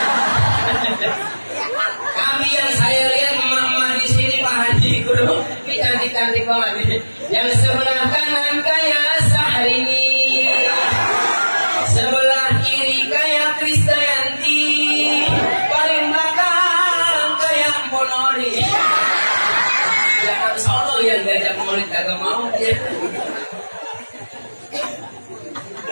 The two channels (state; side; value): inverted; both; correlation -1.00